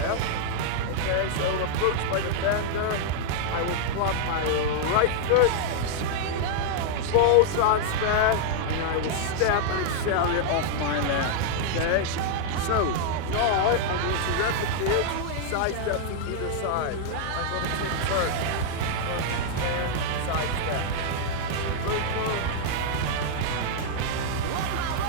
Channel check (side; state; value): both; different; correlation -0.01